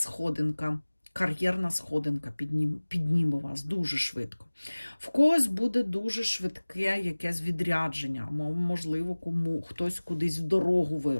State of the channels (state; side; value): inverted; both; correlation -1.00